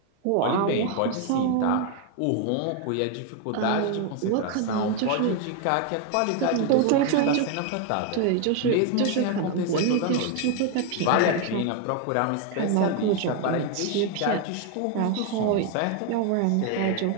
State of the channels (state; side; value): different; both; correlation 0.01